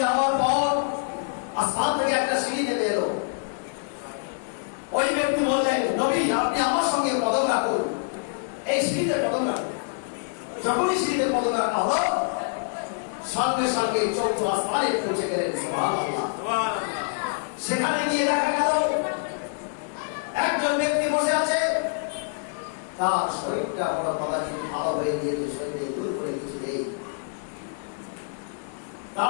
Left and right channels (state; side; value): silent; right; digital silence